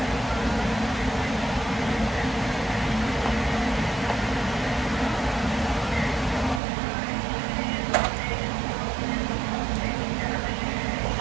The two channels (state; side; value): drops out; left; at 6.6 s